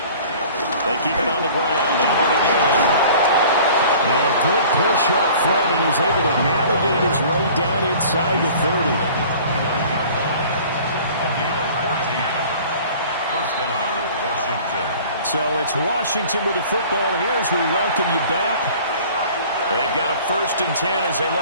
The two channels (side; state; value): both; inverted; correlation -0.47